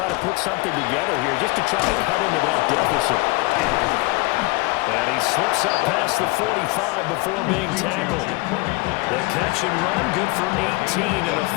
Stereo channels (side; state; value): right; quieter; 24.3 dB